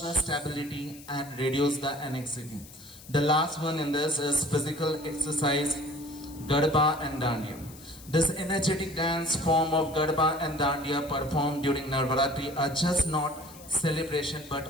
stability and reduce the anxiety. The last one in this is physical exercise, Garba and Dandiya. This energetic dance form of Garba and Dandiya performed during Navaratri are just not celebration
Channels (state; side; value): noise; left; hiss, 19 dB below the sound